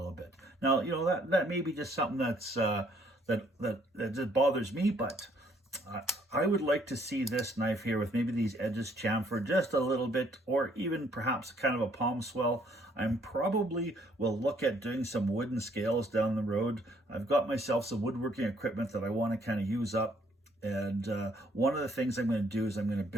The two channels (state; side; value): normal; both; correlation 0.65